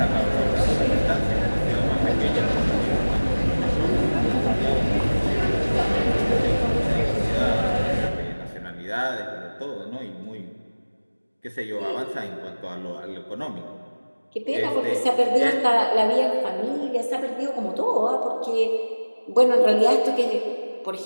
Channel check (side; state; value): both; inverted; correlation -1.00